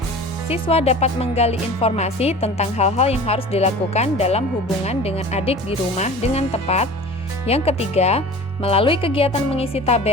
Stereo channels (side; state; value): both; normal; correlation 0.39